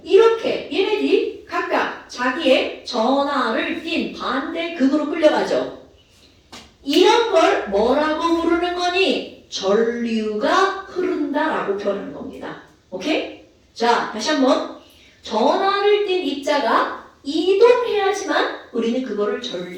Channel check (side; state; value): both; identical; correlation 1.00